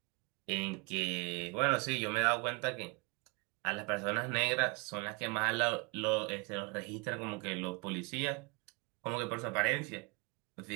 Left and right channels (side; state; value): left; quieter; 29.7 dB